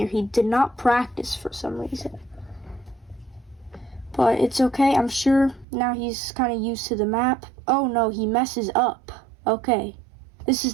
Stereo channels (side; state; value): left; drops out; at 5.7 s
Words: He did not practice for some reason. But it's okay, I'm sure now he's kind of used to the map. Oh no, he messes up. Okay. This